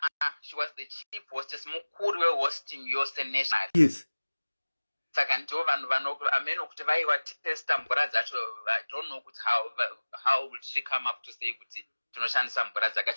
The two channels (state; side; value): inverted; both; correlation -1.00